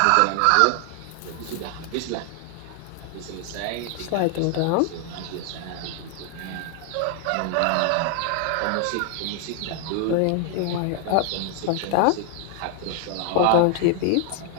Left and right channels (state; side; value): different; both; correlation 0.00